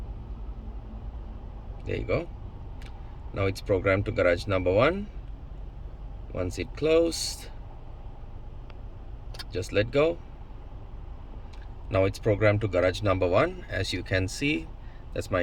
There you go. Now it's programmed to garage number 1. Once it closed, just let go. Now it's programmed to garage number 1. As you can see, that's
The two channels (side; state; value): both; identical; correlation 1.00